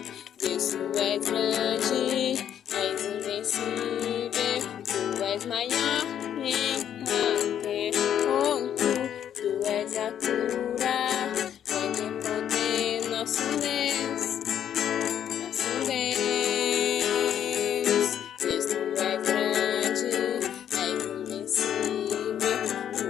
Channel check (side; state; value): right; quieter; 9.7 dB